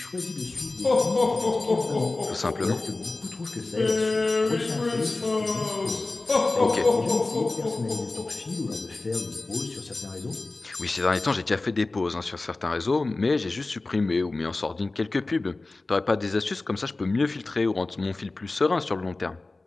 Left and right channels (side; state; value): right; quieter; 3.2 dB